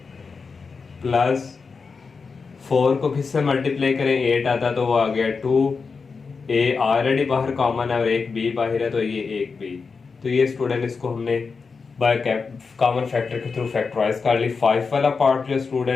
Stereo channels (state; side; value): quieter; right; 4.9 dB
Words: प्लस 4 को किससे मल्टीप्लाई करें 8 आता तो वो आ गया 2, a ऑलरेडी बाहर कॉमन है और एक b बाहर है तो ये एक b। तो ये स्टूडेंट इसको हमने बाय कॉमन फैक्टर के थ्रू फैक्टराइज कर ली। 5 वाला पार्ट जो